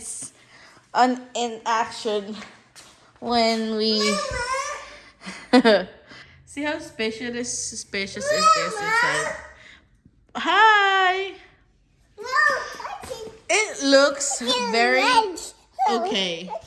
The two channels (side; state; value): both; identical; correlation 1.00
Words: in action. When we see how spacious is this inside. Hi. It looks very okay